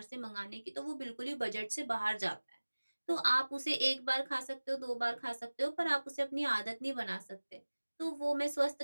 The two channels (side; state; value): both; inverted; correlation -1.00